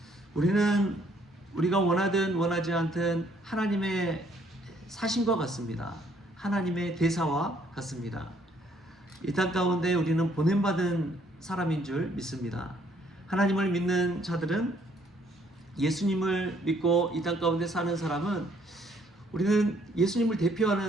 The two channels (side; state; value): both; normal; correlation 0.65